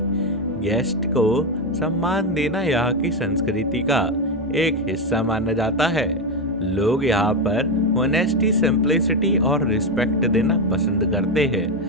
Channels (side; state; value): both; normal; correlation 0.09